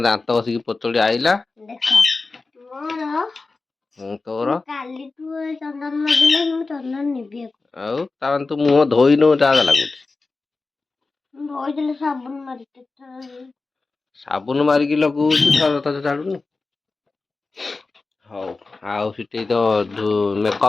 ଦାନ୍ତ ବସିକି ପତଳି ଆଇଲା। ତୋର ଆଉ ତାମାନେ ତୁ ମୁହଁ ଧୋଇନୁ, ଯାହା ଲାଗୁଛି। ସାବୁନ ମାରିକି ଲଗଉଛୁ, ଥରେ ଛାଡୁନୁ। ହଉ, ଆଉ ସେଠି ତ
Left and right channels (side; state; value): right; quieter; 3.8 dB